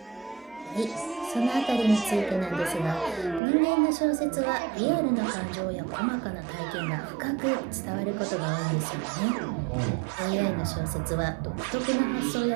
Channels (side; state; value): left; drops out; at 3.4 s